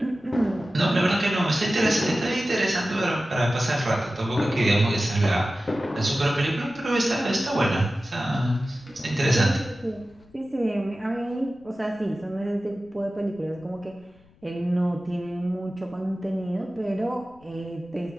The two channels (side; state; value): left; noise; rumble, 29 dB below the sound